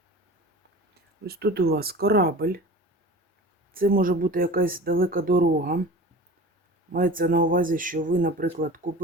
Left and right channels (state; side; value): normal; both; correlation 0.38